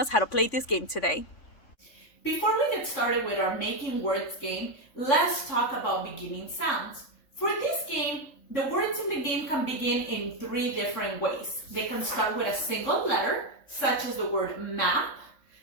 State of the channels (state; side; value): late; right; 3.5 ms